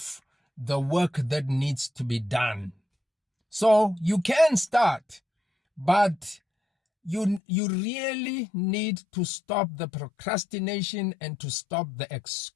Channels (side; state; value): right; drops out; at 7.4 s